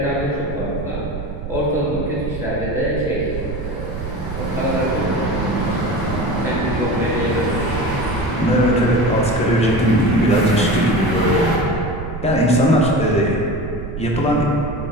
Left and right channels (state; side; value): noise; right; rumble, 8 dB below the sound